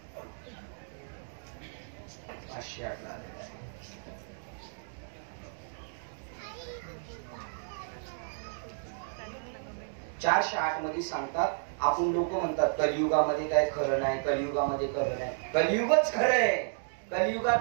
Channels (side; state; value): left; silent; digital silence